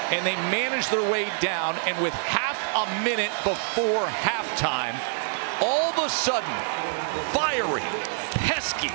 and they manage their way down, and with half a minute before halftime, all of a sudden, fiery, pesky,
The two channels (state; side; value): silent; left; digital silence